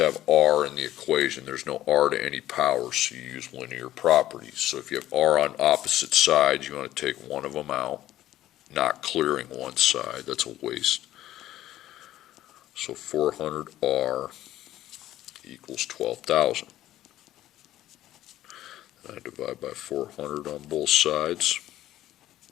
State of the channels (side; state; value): right; quieter; 13.8 dB